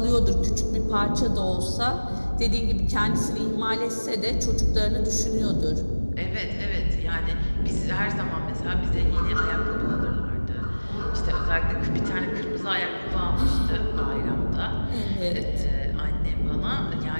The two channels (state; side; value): inverted; both; correlation -1.00